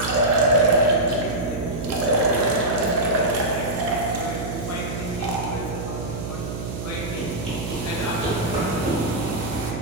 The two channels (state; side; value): noise; right; hum, 6 dB below the sound